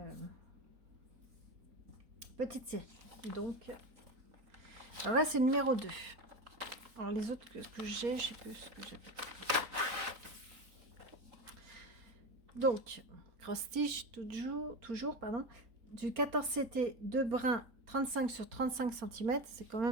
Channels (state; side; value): late; left; 4.3 ms